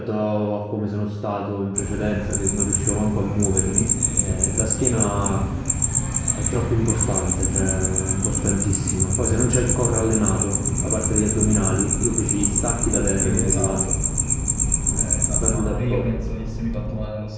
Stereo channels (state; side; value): identical; both; correlation 1.00